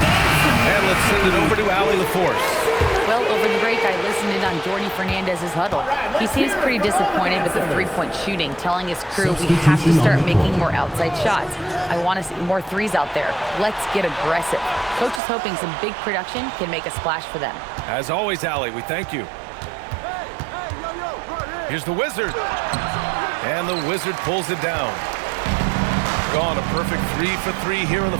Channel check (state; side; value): drops out; left; at 15.2 s